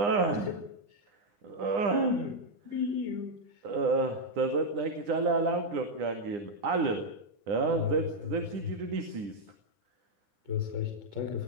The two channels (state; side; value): late; left; 9.8 ms